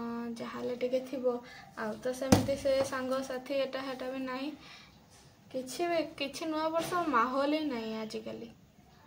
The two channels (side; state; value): both; identical; correlation 1.00